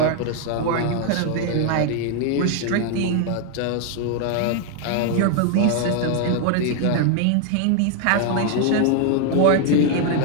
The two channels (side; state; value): both; different; correlation 0.00